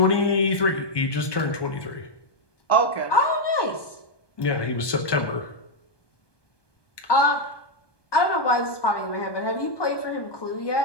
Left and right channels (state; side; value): late; right; 1.2 ms